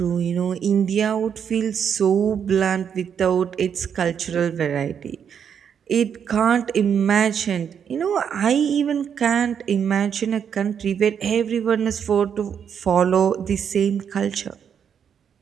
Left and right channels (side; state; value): left; quieter; 7.8 dB